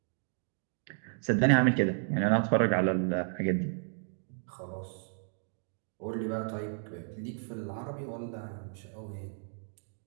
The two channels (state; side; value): silent; left; 56 dB below the other